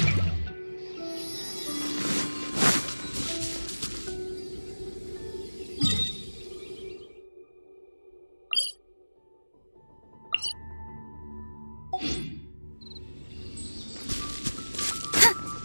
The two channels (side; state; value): both; inverted; correlation -1.00